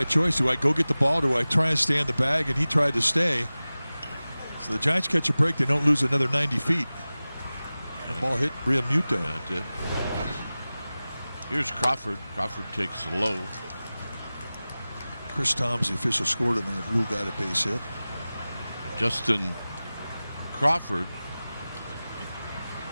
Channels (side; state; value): both; inverted; correlation -0.97